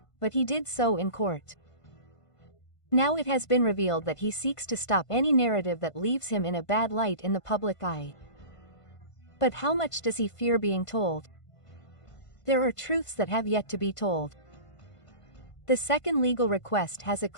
but he did so in court. Now it has been revealed that he seeks to stop any narrative that leaves him in a bad light in the public eye. But how much does he fear being told? There are truths that have yet to be told. The second legal request has a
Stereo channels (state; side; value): late; right; 1.5 ms